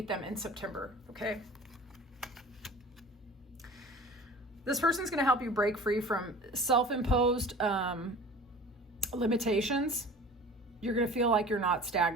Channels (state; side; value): normal; both; correlation 0.41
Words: them in September, okay? This person's gonna help you break free from self-imposed limitations. You're gonna feel like you're not